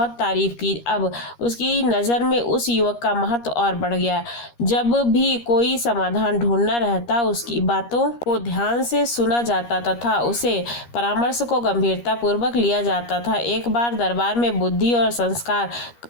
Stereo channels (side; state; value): right; late; 13 ms